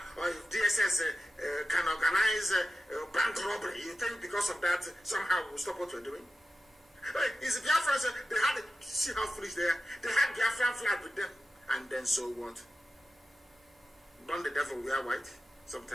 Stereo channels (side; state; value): both; normal; correlation 0.93